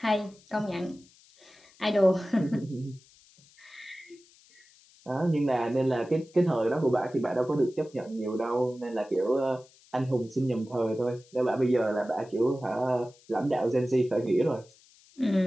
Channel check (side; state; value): left; noise; hiss, 28 dB below the sound